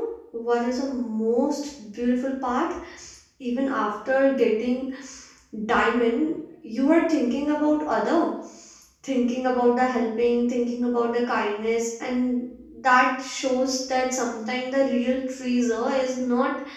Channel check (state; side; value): identical; both; correlation 1.00